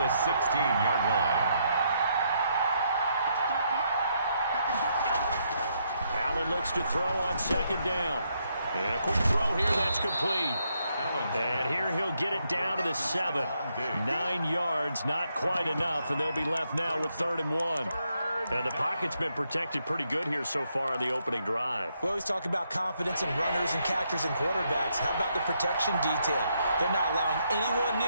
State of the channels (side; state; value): both; inverted; correlation -0.77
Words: 16-yard line. Allen looks to throw on 2nd down. And a quick throw here, that's complete. And here he'll get it down to the 7. 9 yards, not quite enough, and they'll be left now with 3rd and 1. And the pocket's been protected pretty good here so far on the opening drive. We always talk about confidence in runners and catchers and quarterbacks. How about the protection detail? They're not allowing anyone